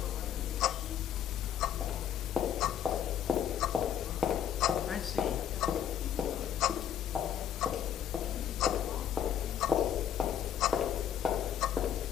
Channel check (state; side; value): quieter; right; 9.5 dB